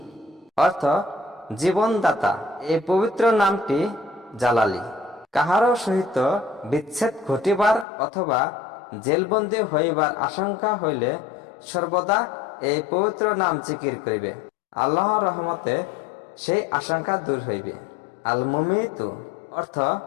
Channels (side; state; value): right; drops out; at 7.9 s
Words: অর্থ জীবনদাতা। এই পবিত্র নামটি জালালি। কাহারও সহিত বিচ্ছেদ ঘটিবার অথবা জেলবন্দী হইবার আশঙ্কা হইলে সর্বদা এই পবিত্র নাম জিকির করিবে, আল্লাহর রহমতে সেই আশঙ্কা দূর হইবে। আল মুমিতু অর্থ